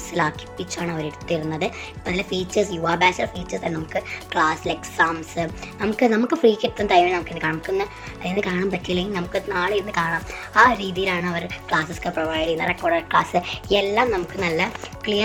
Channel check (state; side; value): identical; both; correlation 1.00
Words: അവർ എടുത്തിരുന്നത്. ഇപ്പം അതിലെ ഫീച്ചേഴ്സ്, യുവ ബാച്ചിലെ ഫീച്ചേഴ്സ് നമുക്ക് ക്ലാസ്സിൽ എക്സാംസ് നമുക്ക് ഫ്രീ കിട്ടുന്ന ടൈമിൽ നമുക്കൊന്ന് അതിന് കാണാൻ പറ്റില്ലെങ്കിൽ നമുക്ക് നാളെ ഇരുന്ന് കാണാം. ആ രീതിയിലാണ് അവർ ക്ലാസ്സൊക്കെ പ്രൊവൈഡ് ചെയ്യുന്നത്. റെക്കോർഡഡ് ക്ലാസ് എല്ലാം നമുക്ക് നല്ല